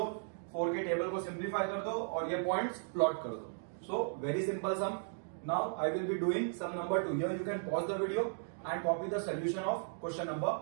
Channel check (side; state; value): left; silent; digital silence